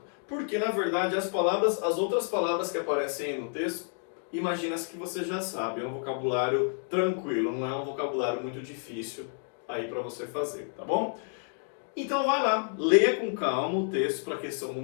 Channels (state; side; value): silent; right; 58 dB below the other